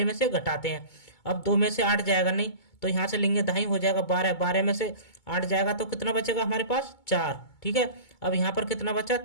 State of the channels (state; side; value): late; right; 2.2 ms